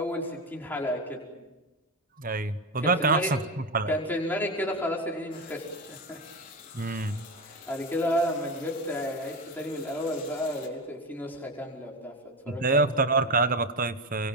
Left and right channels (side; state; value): both; normal; correlation 0.17